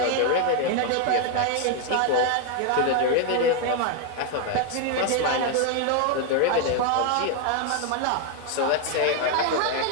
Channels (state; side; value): different; both; correlation 0.01